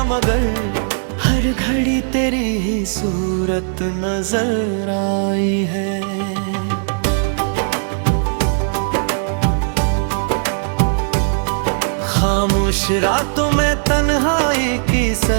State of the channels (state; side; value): silent; left; digital silence